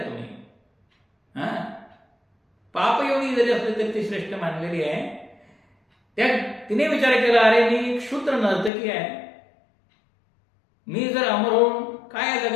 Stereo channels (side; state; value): right; drops out; at 8.7 s